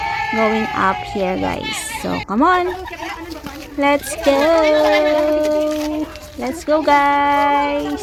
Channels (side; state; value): both; identical; correlation 1.00